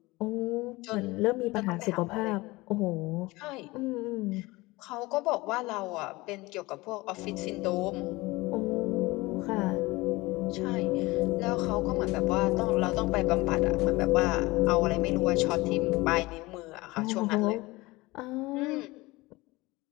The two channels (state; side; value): quieter; right; 21.6 dB